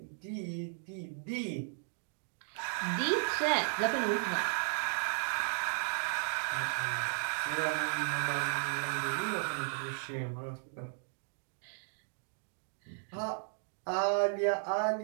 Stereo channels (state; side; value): silent; left; digital silence